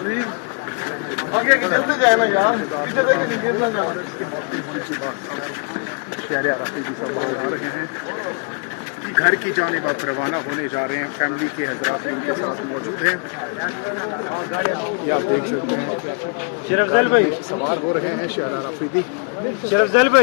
आगे चलते जाए ना यार, पीछे देखे गिर ना जाओ। शहर अफरीदी सब बाहर आ रहे हैं कि घर की जानिब अब रवाना होने जा रहे हैं। फैमिली के हज़रात इनके साथ मौजूद हैं। शरफजल भाई सवार हो रहे हैं शहर अफरीदी। शरफजल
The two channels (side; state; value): right; quieter; 37.8 dB